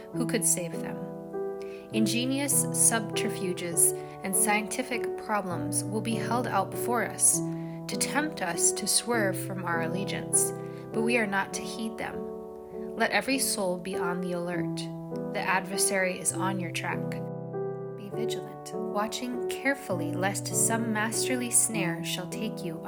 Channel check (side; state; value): both; identical; correlation 1.00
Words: who could save them. Ingenious subterfuges and scientific problems will be held out before us to tempt us to swerve from our allegiance, but we are not to heed them. Let every soul be on the alert. The adversary is on your track. Be vigilant, watching carefully lest some masterly snare shall take you